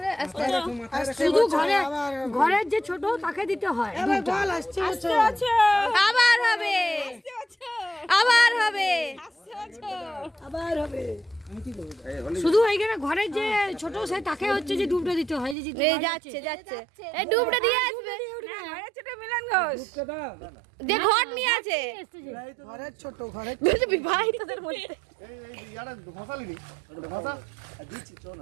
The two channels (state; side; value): drops out; left; at 15.6 s